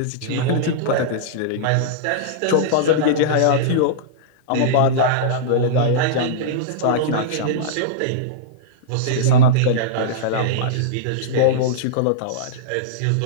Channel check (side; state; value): both; different; correlation -0.03